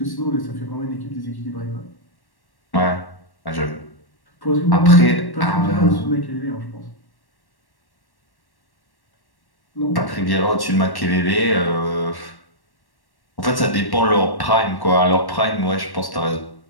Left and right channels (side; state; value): right; late; 1.1 ms